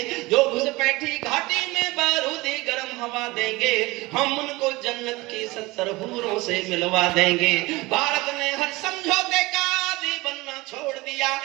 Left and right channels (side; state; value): left; quieter; 21.6 dB